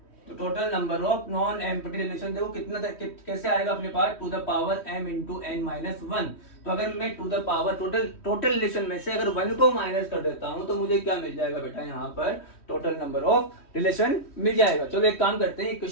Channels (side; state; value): right; late; 3.1 ms